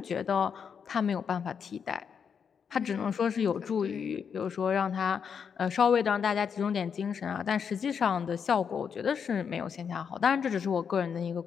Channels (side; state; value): right; quieter; 6.9 dB